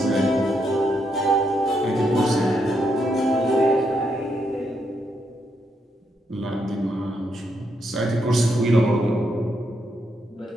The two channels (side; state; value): both; normal; correlation 0.79